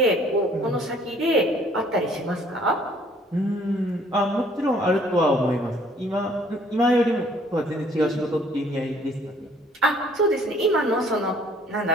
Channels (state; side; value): normal; both; correlation 0.59